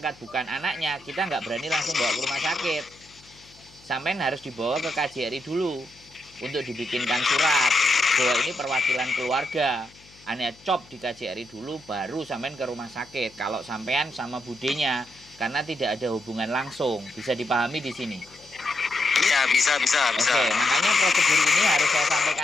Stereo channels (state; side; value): noise; left; hum, 26 dB below the sound